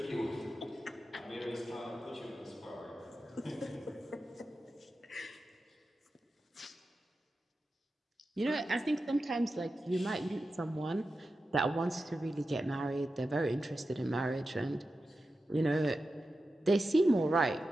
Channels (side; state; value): both; normal; correlation 0.92